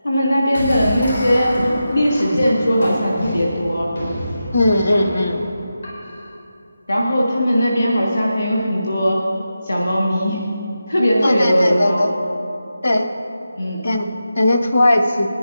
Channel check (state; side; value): inverted; both; correlation -0.90